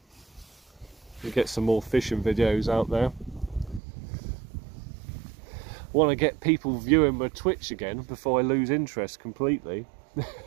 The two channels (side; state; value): left; drops out; at 3.8 s